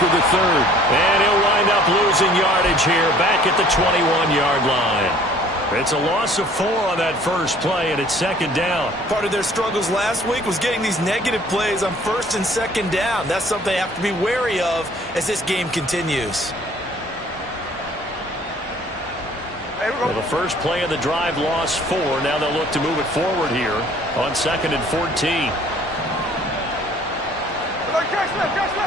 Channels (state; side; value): normal; both; correlation 0.54